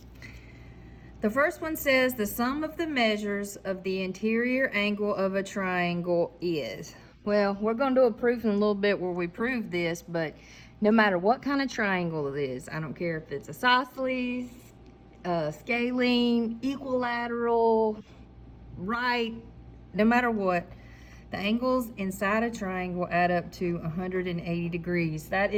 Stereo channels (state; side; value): identical; both; correlation 1.00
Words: The first one says the sum of the measures of the interior angle of a triangle is. Well, we're going to do a proof in a little bit where we prove this, but no matter what kind of triangle it is, I don't care if it's isosceles, scalene, equilateral, right, no matter what, the angles inside a triangle add up to 180 degrees. That